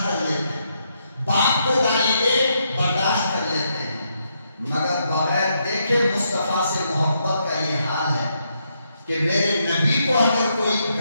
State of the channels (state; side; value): inverted; both; correlation -0.79